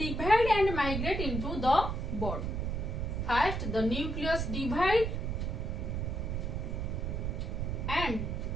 and migrate into the bud. First the nucleus divide and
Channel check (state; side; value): noise; right; rumble, 2 dB below the sound